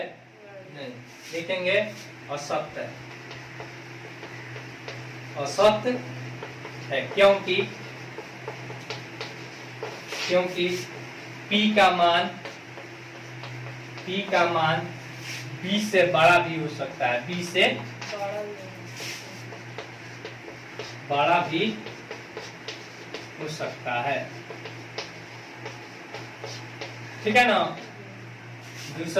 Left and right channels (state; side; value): identical; both; correlation 1.00